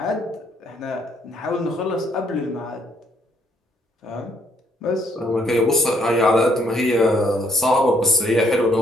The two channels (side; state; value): both; normal; correlation 0.68